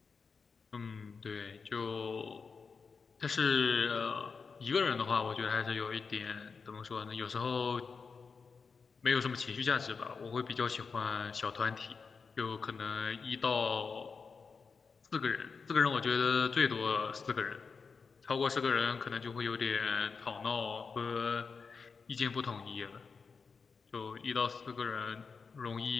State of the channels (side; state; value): right; quieter; 5.1 dB